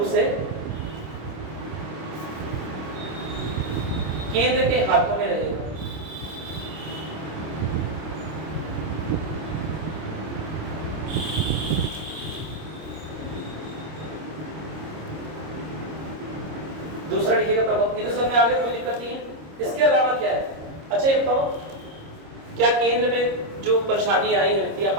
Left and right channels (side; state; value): left; late; 26 ms